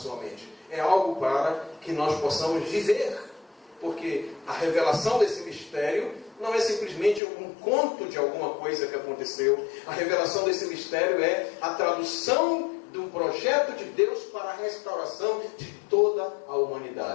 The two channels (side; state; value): right; drops out; at 7.2 s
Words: mente. É algo para que nós possamos viver, porque a revelação desse mistério não é simplesmente um conto de alguma coisa que aconteceu. A revelação desse mistério é a tradução de um projeto de Deus para a restauração de toda a